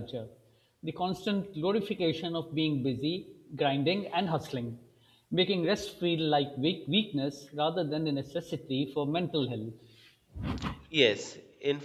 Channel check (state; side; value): identical; both; correlation 1.00